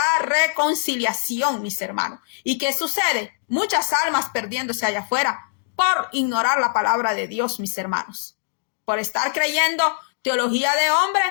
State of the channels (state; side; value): silent; right; digital silence